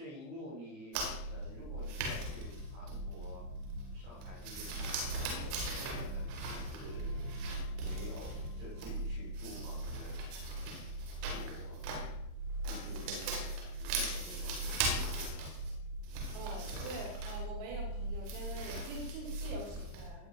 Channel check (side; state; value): left; late; 39 ms